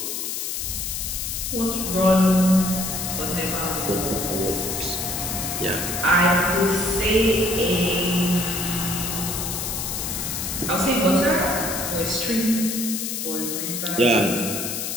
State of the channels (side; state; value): left; noise; hiss, 3 dB below the sound